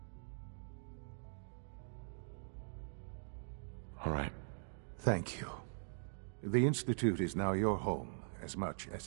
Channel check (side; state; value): left; silent; digital silence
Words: All right. Thank you. The Institute is now your home, as much as